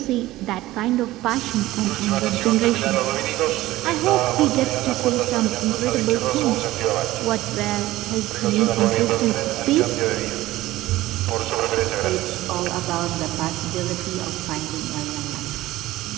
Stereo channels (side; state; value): left; quieter; 16.8 dB